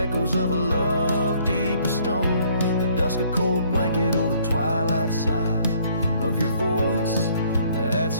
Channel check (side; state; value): both; inverted; correlation -0.63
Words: of a love deep as stone. The dusk a cold blanket or the twilight side of your voice that's